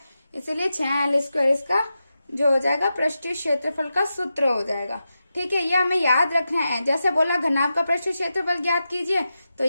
इसीलिए 6L स्क्वायर इसका जो हो जाएगा पृष्ठीय क्षेत्रफल का सूत्र हो जाएगा। ठीक है, ये हमें याद रखना है। जैसे बोला घनाभ का पृष्ठीय क्षेत्रफल ज्ञात कीजिए तो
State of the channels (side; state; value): both; inverted; correlation -0.90